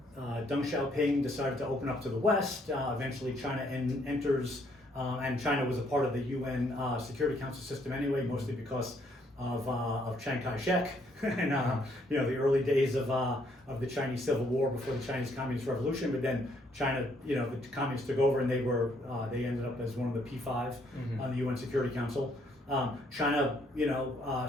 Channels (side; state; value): both; normal; correlation 0.69